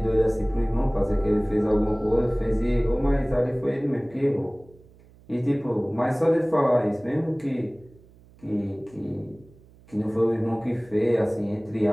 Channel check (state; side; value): noise; right; hum, 26 dB below the sound